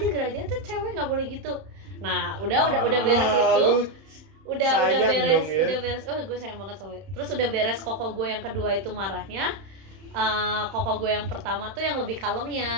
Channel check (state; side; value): late; left; 31 ms